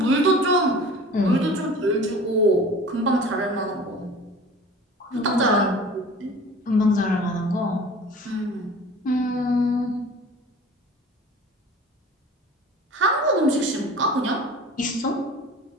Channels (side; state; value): both; normal; correlation 0.42